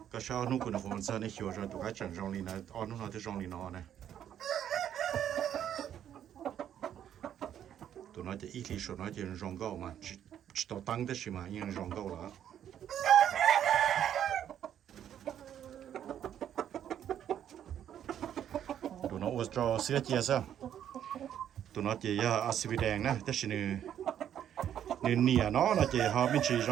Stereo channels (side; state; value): left; quieter; 10.1 dB